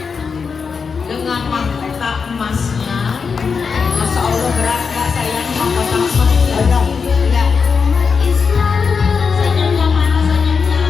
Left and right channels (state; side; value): quieter; right; 5.6 dB